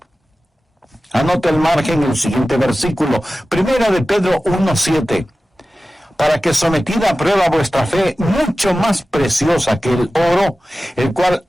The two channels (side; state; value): both; normal; correlation 0.96